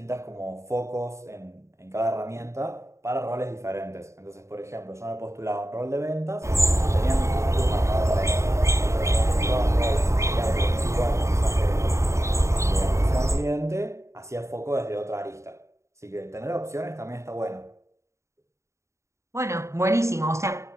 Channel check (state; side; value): late; left; 0.14 ms